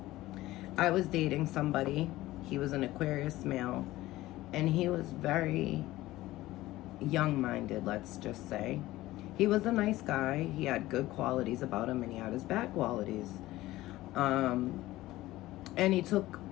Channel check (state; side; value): quieter; right; 16.9 dB